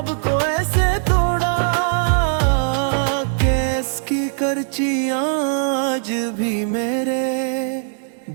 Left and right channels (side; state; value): left; silent; digital silence